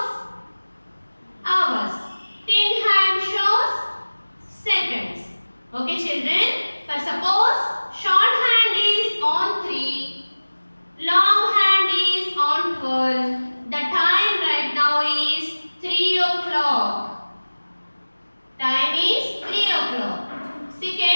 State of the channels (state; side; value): inverted; both; correlation -1.00